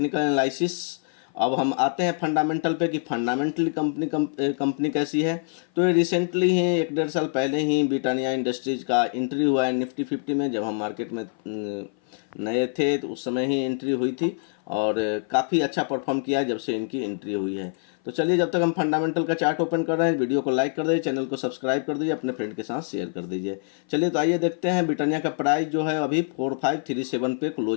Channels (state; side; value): silent; right; 57 dB below the other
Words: एनालिसिस। अब हम आते हैं फंडामेंटल पे कि फंडामेंटली कंपनी कैसी है। तो ये रिसेंटली ही 1-1.5 साल पहले ही ब्रिटानिया इंडस्ट्रीज का एंट्री हुआ है निफ्टी 50 में। जब हम मार्केट में नए थे तो उस समय ही एंट्री हुई थी और काफ़ी अच्छा परफॉर्म किया है जब से इनकी एंट्री हुई है। तो चलिए, जब तक हम फंडामेंटल का चार्ट ओपन कर रहे हैं, वीडियो को लाइक कर दीजिए, चैनल को सब्सक्राइब कर दीजिए, अपने फ्रेंड के साथ शेयर कर दीजिए। चलिए तो आइए देखते हैं। ब्रिटानिया का प्राइस जो है अभी 4537 पे